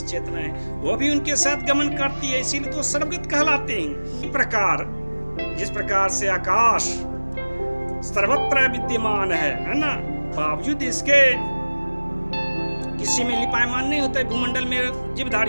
चेतनाएं, वो भी उनके साथ गमन करती है, इसीलिए तो सर्वगत कहलाते हैं। इस प्रकार जिस प्रकार से आकाश सर्वत्र विद्यमान है ना, बावजूद इसके किसी में लिपायमान नहीं होता है भूमंडल में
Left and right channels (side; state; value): both; inverted; correlation -1.00